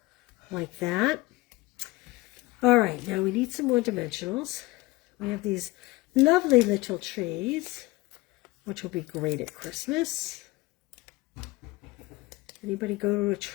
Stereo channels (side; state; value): right; quieter; 20.8 dB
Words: like that. All right, now we need some more dimensionals. We have these lovely little trees, which will be great at Christmas. Anybody go to a